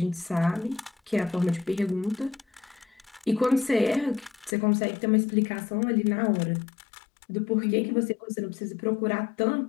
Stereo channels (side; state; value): right; drops out; at 4.5 s